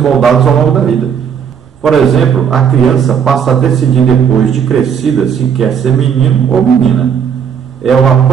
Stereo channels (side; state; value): left; quieter; 7.6 dB